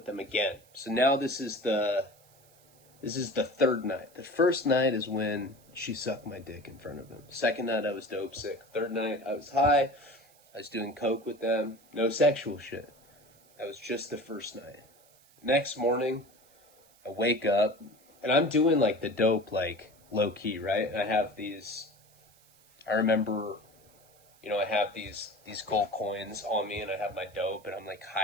them again. So now this is the third night. The first night is when she sucked my dick in front of them. Second night, I was dope sick. Third night, I was high. I was doing coke with them. No sexual shit. That was just the first night. Next morning, I wake up, and I'm doing, like, the dope, like, low-key, right? And I have these... I remember... I have these gold coins on me, and I have my dope, and I'm, like,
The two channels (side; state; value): right; noise; hiss, 29 dB below the sound